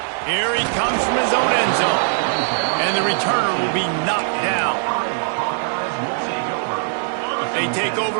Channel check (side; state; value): left; silent; digital silence